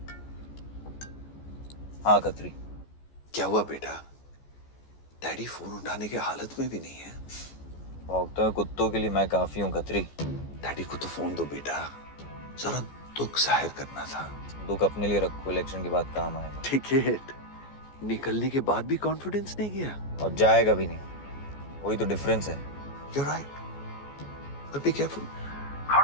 हाँ खत्री। क्या हुआ बेटा? डैडी फोन उठाने की हालत में भी नहीं है। भौंकते हुए कुत्तों के लिए मैं काफी हूँ खत्री। डैडी को तो फोन दो बेटा, जरा दुख जाहिर करना था। दुख अपने लिए रखो, इलेक्शन के बाद काम आएगा। टिकट निकलने के बाद भी कॉन्फिडेंस नहीं गया और जाएगा भी नहीं, वही तो डिफरेंस है। You're right, but be careful.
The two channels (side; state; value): right; late; 14 ms